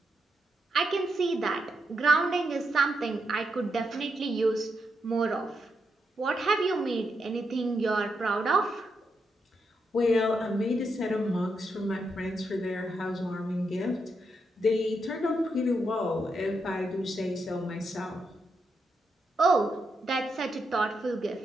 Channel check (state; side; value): normal; both; correlation 0.83